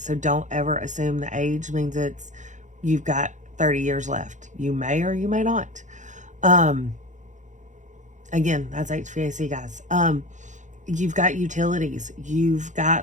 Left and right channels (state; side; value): late; left; 0.35 ms